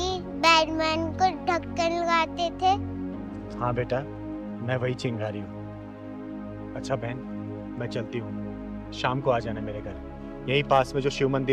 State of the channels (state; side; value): identical; both; correlation 1.00